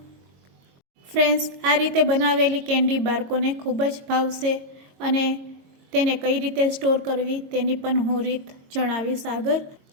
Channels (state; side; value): late; left; 22 ms